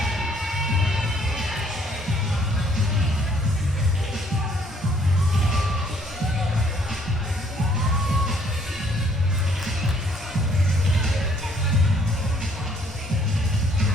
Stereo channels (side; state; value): both; normal; correlation 0.64